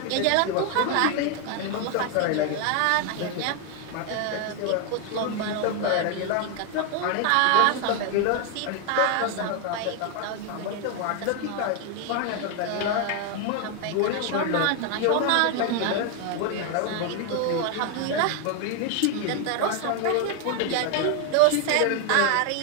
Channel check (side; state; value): both; different; correlation 0.01